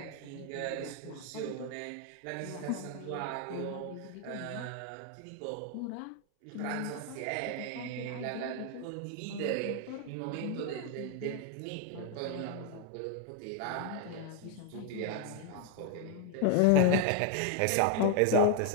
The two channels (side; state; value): both; different; correlation 0.00